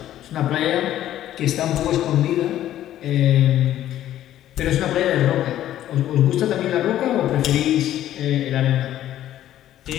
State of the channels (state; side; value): quieter; right; 12.5 dB